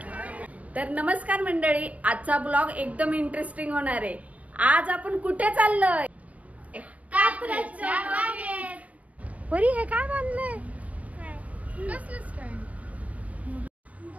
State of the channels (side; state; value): left; late; 0.069 ms